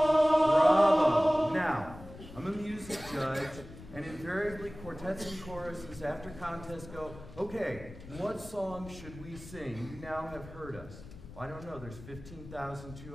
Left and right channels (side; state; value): left; noise; rumble, 16 dB below the sound